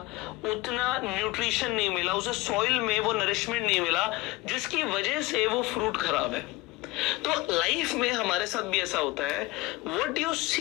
उतना न्यूट्रिशन नहीं मिला, उसे सॉइल में वो नरिशमेंट नहीं मिला जिसकी वजह से वो फ्रूट खराब है। तो लाइफ में हमारे साथ भी ऐसा होता है, what you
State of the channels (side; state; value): right; quieter; 20.8 dB